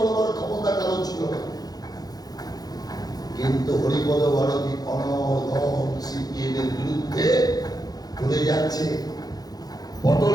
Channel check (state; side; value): late; right; 0.19 ms